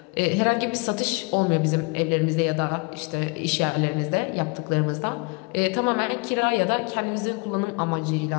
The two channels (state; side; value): quieter; right; 30.4 dB